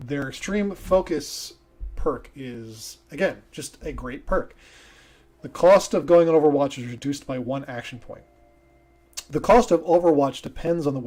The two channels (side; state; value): both; identical; correlation 1.00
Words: extreme focus perk is, again, just a great perk. The cost of going on Overwatch is reduced by 1 action point. The cost of Overwatch depends on the